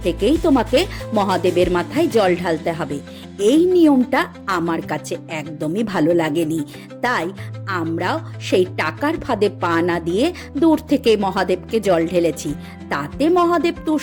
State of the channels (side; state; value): both; identical; correlation 1.00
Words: থেকেই তোমাকে মহাদেবের মাথায় জল ঢালতে হবে। এই নিয়মটা আমার কাছে একদমই ভালো লাগেনি, তাই আমরাও সেই টাকার ফাঁদে পা না দিয়ে দূর থেকে মহাদেবকে জল ঢেলেছি। তাতে মহাদেব